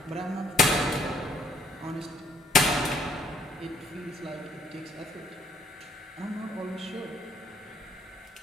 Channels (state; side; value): normal; both; correlation 0.64